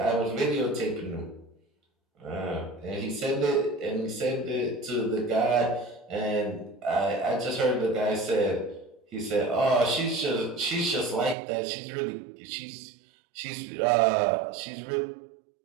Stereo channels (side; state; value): left; drops out; at 11.4 s